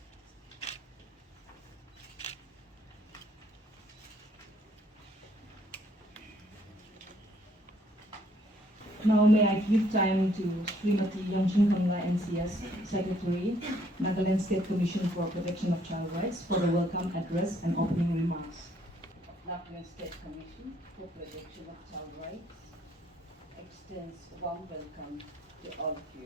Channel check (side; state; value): both; normal; correlation 0.66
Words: Now may I give time to Srimati Yongchin Kamla NCS Secretary, Nagaland State Commission for Protection of Child Rights for the welcome address and opening remarks. Nagaland State Commission for Protection of Child Rights extends a warm welcome to all of